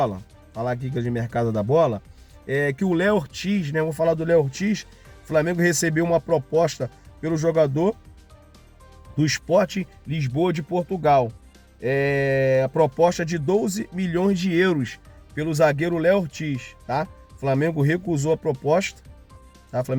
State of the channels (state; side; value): identical; both; correlation 1.00